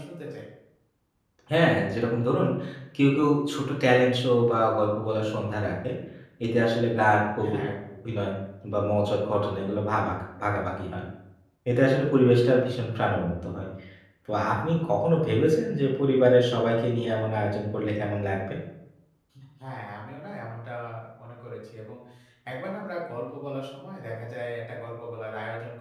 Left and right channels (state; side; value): identical; both; correlation 1.00